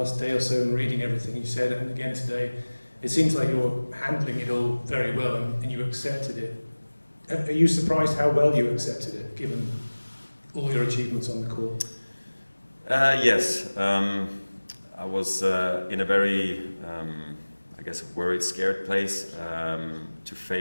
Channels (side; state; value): both; inverted; correlation -1.00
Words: day or so and reading everything you said, and again today, it seems like you're handling it all very well and you accepted it. Are you surprised how well you accepted it, given all your achievements on the court? Yes. I was in a very, I guess, worried, scared place to